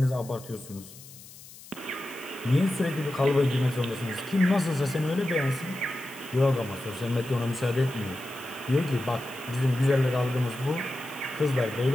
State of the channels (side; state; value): left; noise; hiss, 18 dB below the sound